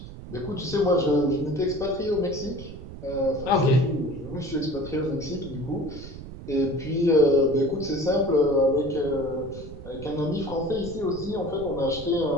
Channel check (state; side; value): noise; right; rumble, 13 dB below the sound